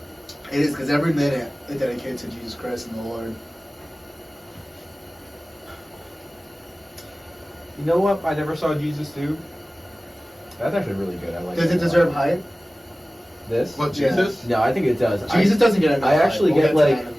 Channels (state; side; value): normal; both; correlation 0.97